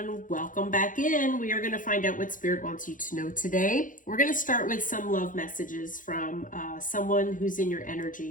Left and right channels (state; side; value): late; right; 0.38 ms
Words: welcome back in. We are going to find out what Spirit wants you to know today. We're going to start with some love messages from someone who's in your